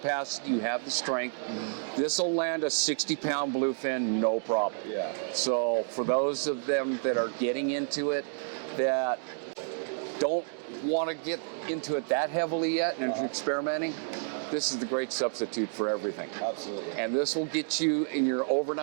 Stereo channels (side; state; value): left; silent; digital silence